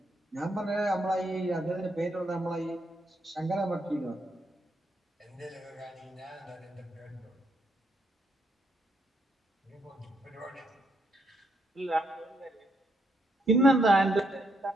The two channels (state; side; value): normal; both; correlation 0.76